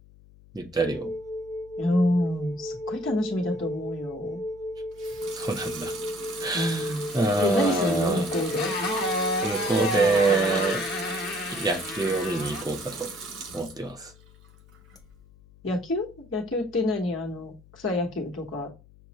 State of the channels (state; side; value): noise; left; hum, 25 dB below the sound